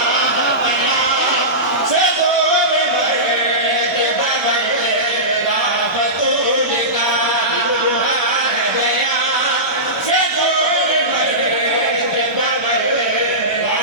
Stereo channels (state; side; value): normal; both; correlation -0.18